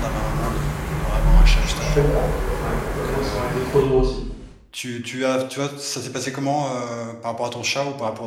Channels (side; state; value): both; identical; correlation 1.00